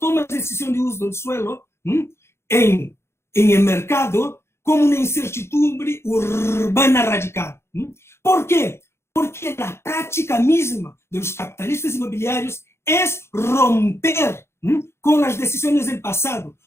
de decisión de uso del suelo en el mercado como una incertidumbre urbana radical. ¿Por qué? Porque la práctica misma de los capitalistas inmobiliarios es romper con las decisiones del pasado,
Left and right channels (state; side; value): late; right; 0.12 ms